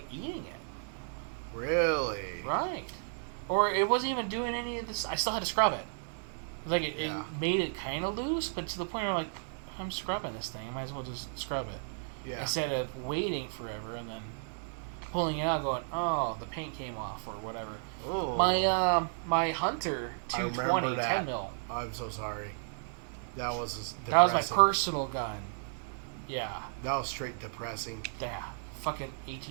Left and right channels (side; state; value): left; silent; 55 dB below the other